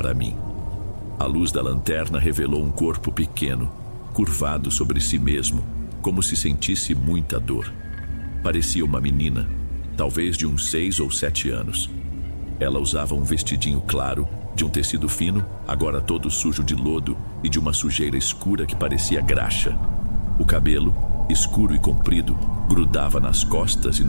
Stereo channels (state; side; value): inverted; both; correlation -1.00